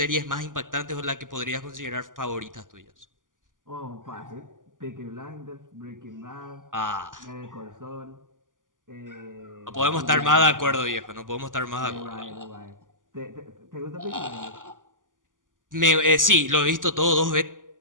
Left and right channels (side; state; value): left; late; 0.88 ms